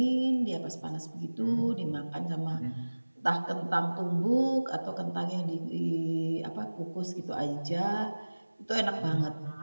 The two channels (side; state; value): both; inverted; correlation -1.00